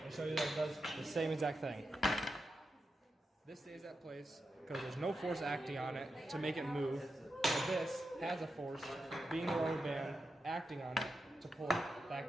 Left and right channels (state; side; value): normal; both; correlation 0.88